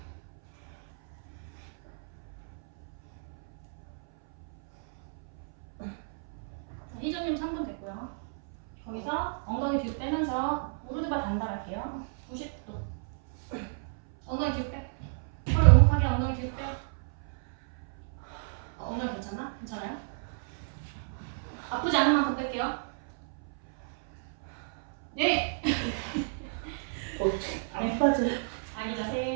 희정님 3분 됐고요. 거기서 엉덩이 뒤로 빼면서 무릎을 단단할게요. 90도. 엉덩이 뒤로 빼. 허리 오목하게 엉덩이 뒤로 빼. 엉덩이 괜찮나? 괜찮아요? 아프지 않은 만큼 뺄게요. 네. 안 빠져. 아기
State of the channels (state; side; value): silent; left; 57 dB below the other